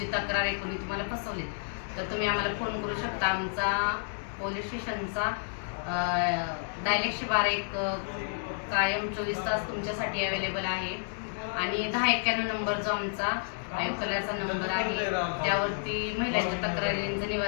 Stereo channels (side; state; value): right; silent; digital silence